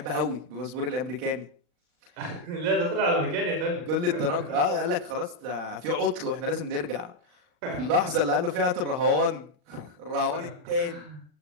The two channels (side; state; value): left; late; 39 ms